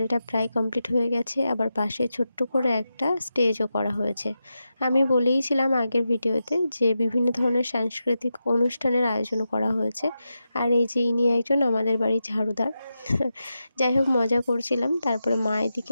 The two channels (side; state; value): both; inverted; correlation -0.89